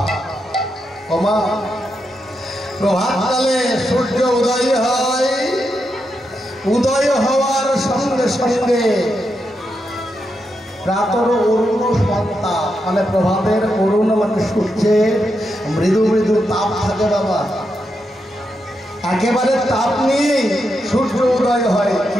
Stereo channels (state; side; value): normal; both; correlation 0.84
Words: ওমা, প্রভাতকালে সূর্য উদয় হয়, উদয় হওয়ার সঙ্গে সঙ্গে প্রাতর অরুণ সন্তাপ মানে প্রভাতের অরুণ মানে সূর্যের মৃদু মৃদু তাপ থাকে বাবা, একেবারে তাপ নিয়ে সূর্য উদয় হয়।